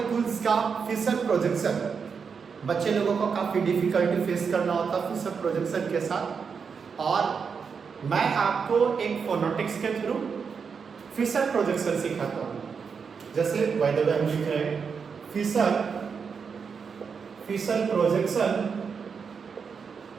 का फिशर प्रोजेक्शन। बच्चे लोगों को काफ़ी डिफिकल्टी फेस करना होता है फिशर प्रोजेक्शन के साथ, और मैं आपको एक फोनोटिक्स के थ्रू फिशर प्रोजेक्शन सिखाता हूँ। जैसे बाय द वे हम लिख रहे हैं Fisher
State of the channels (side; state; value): left; quieter; 6.0 dB